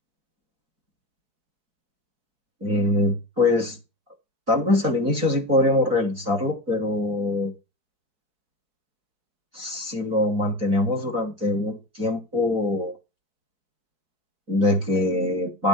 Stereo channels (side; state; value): left; late; 4.6 ms